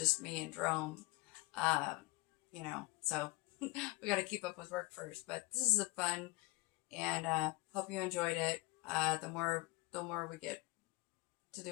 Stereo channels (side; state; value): right; quieter; 22.3 dB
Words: me and Jerome, so we got to keep up with work first. But this is a fun, and hope you enjoyed it. The more we get to